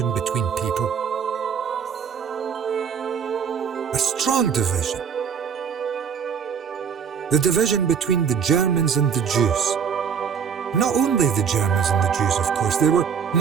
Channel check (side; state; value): left; quieter; 7.0 dB